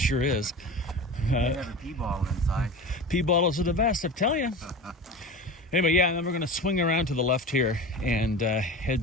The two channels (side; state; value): both; normal; correlation 0.32